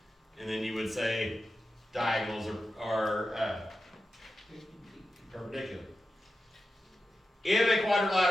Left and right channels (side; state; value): both; normal; correlation 0.91